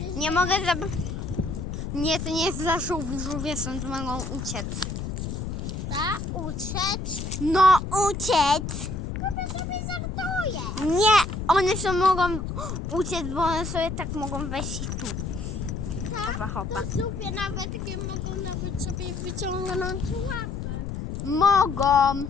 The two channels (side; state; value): left; noise; rumble, 5 dB below the sound